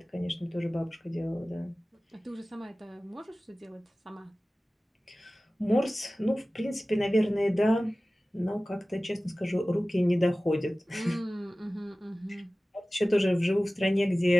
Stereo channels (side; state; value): both; normal; correlation 0.97